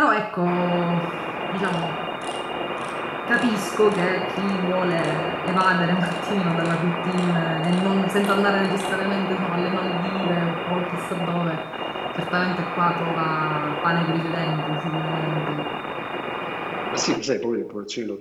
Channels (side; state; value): both; identical; correlation 1.00